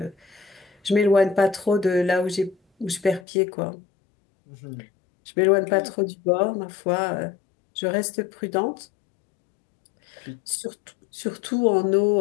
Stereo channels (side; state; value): right; drops out; at 3.2 s